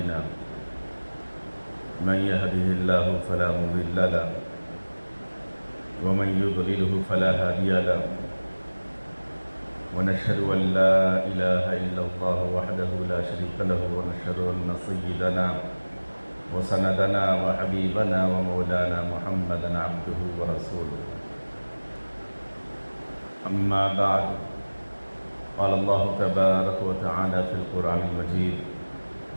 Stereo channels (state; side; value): inverted; both; correlation -1.00